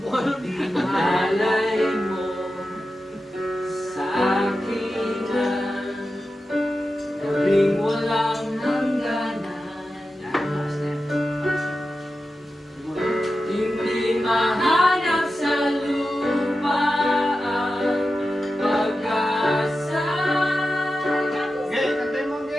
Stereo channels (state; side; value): normal; both; correlation 0.92